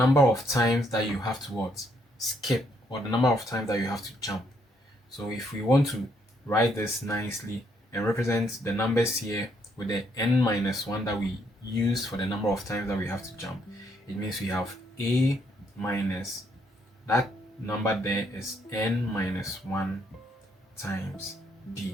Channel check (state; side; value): normal; both; correlation 0.71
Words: of times that you have to skip, or the number of times that you have to jump. So if we want to write this nicely and represent the numbers here with the n minus 1 that we use for the number of times that we have to jump, it means we have A minus, that number there is n minus 1 times